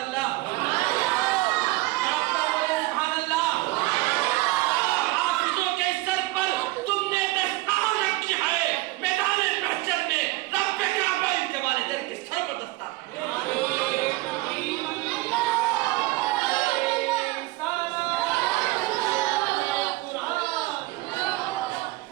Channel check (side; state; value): left; quieter; 20.3 dB